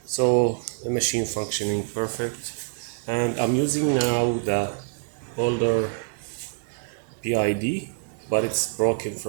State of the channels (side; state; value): left; silent; digital silence